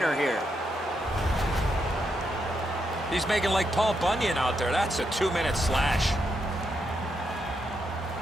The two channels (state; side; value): normal; both; correlation 0.81